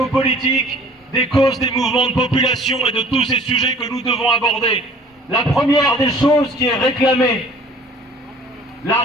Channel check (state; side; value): normal; both; correlation 0.51